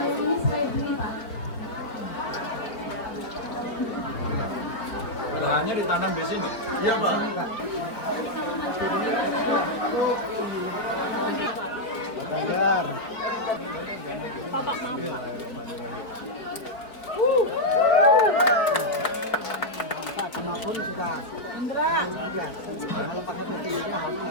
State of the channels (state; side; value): late; right; 4.3 ms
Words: Lahannya ditanam di sini? Iya, Pak. Pak Ganjar. Bapak maaf. Apapun suka. Kalau pakai putih itu harus.